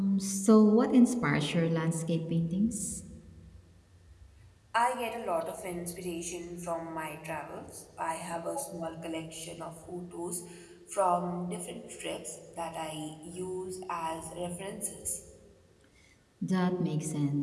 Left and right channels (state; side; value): identical; both; correlation 1.00